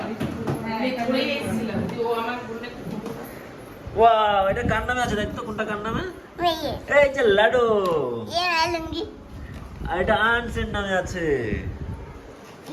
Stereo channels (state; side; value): identical; both; correlation 1.00